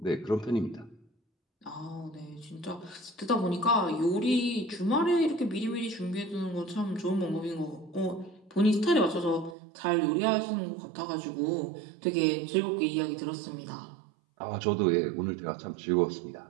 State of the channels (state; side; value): drops out; left; at 9.6 s